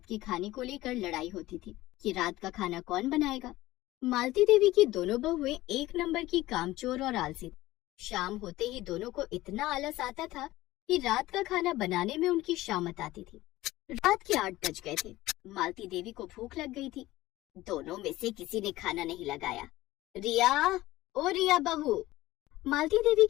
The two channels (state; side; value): quieter; right; 17.1 dB